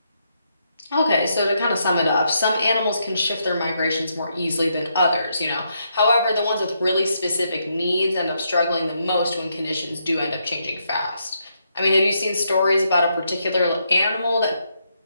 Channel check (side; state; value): both; inverted; correlation -0.78